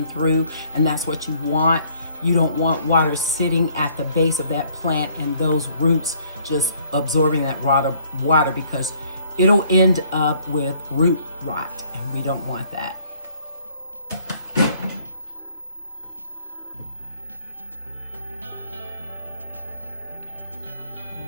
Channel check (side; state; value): both; inverted; correlation -0.61